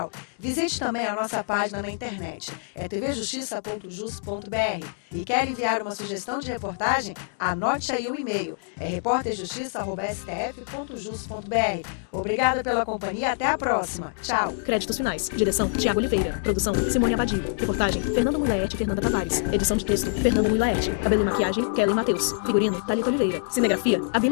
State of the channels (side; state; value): right; silent; digital silence